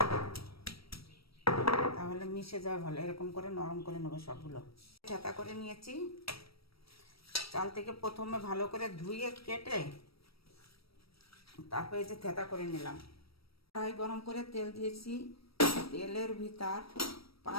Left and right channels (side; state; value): right; late; 0.75 ms